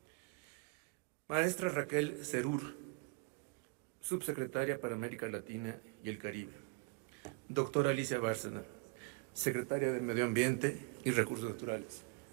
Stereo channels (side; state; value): left; quieter; 28.4 dB